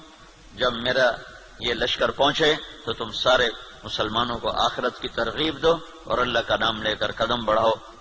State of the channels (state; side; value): identical; both; correlation 1.00